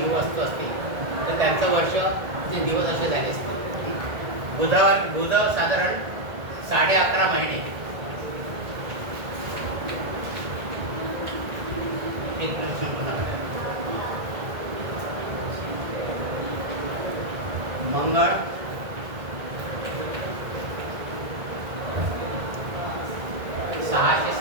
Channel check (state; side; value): late; left; 1.9 ms